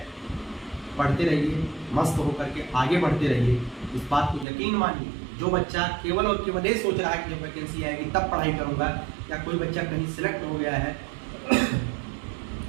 पढ़ते रहिए, मस्त होकर के आगे बढ़ते रहिए, इस बात को यकीन मानिए। जो बच्चा केवल और केवल ये सोच रहा है कि जब वैकेंसी आएगी तब पढ़ाई करूंगा, या कोई बच्चा कहीं सिलेक्ट हो गया है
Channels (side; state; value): left; drops out; at 4.5 s